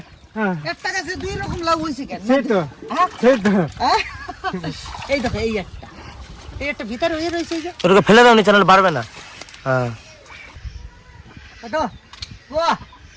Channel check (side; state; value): both; identical; correlation 1.00